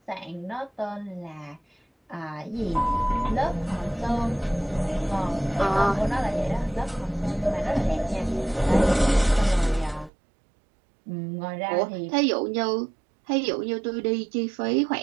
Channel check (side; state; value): left; drops out; at 10.1 s